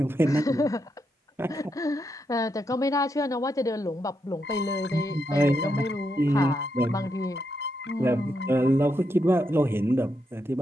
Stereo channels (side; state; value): both; normal; correlation 0.82